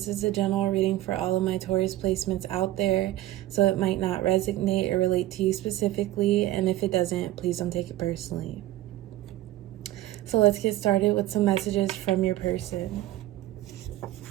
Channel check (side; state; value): left; quieter; 15.3 dB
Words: is a general reading for all of my Taurus placements out there, so it might not resonate or relate to you specifically, and if it doesn't, please don't take it personally. So let's get started with some messages from your person.